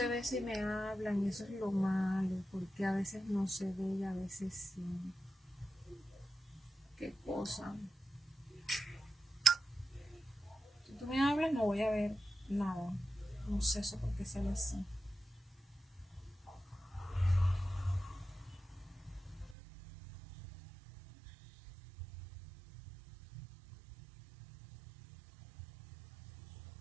ve si me hablan y eso es lo malo, porque a veces no se ve y a veces sí. ¿Qué cosa? Si tú me hablas no voy a ver nada. No sé eso por qué sale así.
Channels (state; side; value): drops out; left; at 19.6 s